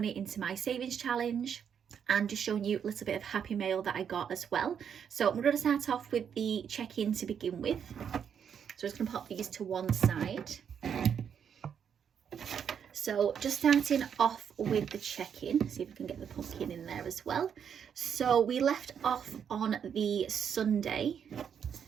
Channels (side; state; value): left; quieter; 7.8 dB